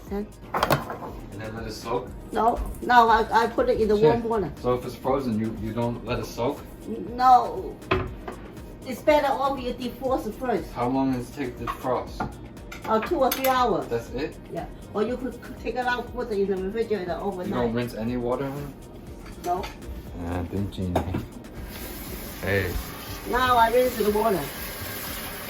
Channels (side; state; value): both; identical; correlation 1.00